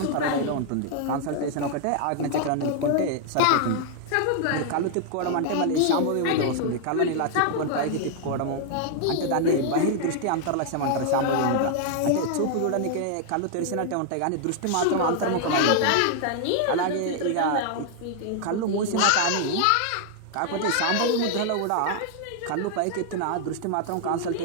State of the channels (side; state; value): both; different; correlation 0.00